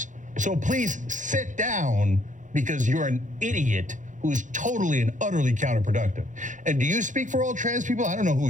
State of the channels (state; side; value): late; left; 0.36 ms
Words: So please sit down because you're an idiot who's totally and utterly counterproductive. And do you speak for all trans people? I don't know who